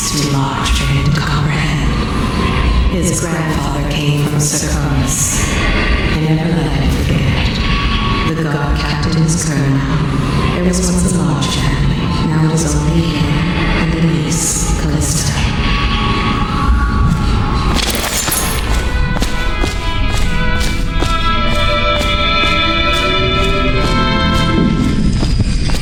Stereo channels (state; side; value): identical; both; correlation 1.00